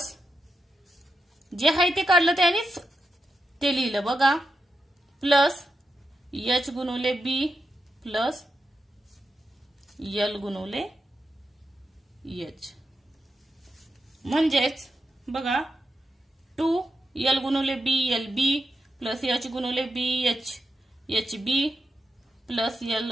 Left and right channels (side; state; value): both; normal; correlation 0.86